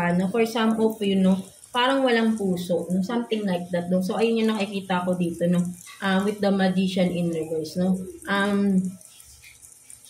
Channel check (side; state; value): both; identical; correlation 1.00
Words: no. For some of you, no, parang walang puso, no, something like that, no. So ayun yung nakikita ko dito, no, with the Magician in reverse, no.